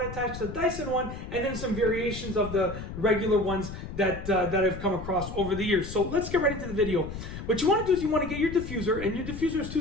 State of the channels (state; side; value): noise; left; rumble, 9 dB below the sound